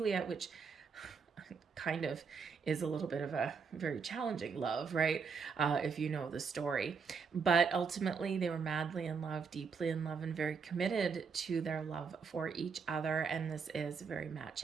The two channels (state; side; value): quieter; left; 5.6 dB